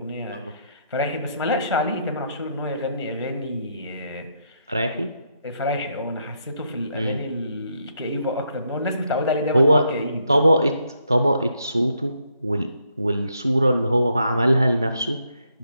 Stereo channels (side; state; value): both; inverted; correlation -0.76